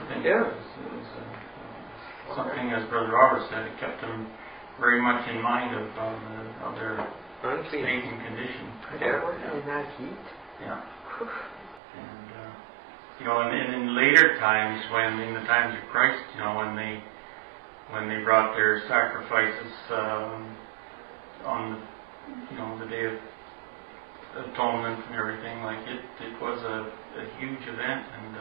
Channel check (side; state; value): left; drops out; at 11.8 s